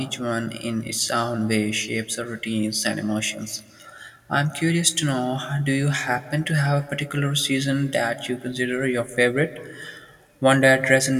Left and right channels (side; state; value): both; identical; correlation 1.00